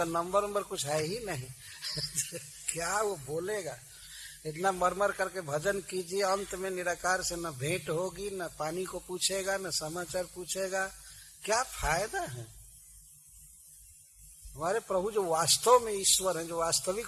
नंबर कुछ है ही नहीं। क्या वो बोलेगा? इतना मरमर करके भजन कीजिए, अंत में निराकार से न भेंट होगी, न पानी को पूछेगा, न समाचार पूछेगा, क्या फायदा है? हमारे प्रभु जो वास्तव में ईश्वर हैं, जो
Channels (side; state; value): both; identical; correlation 1.00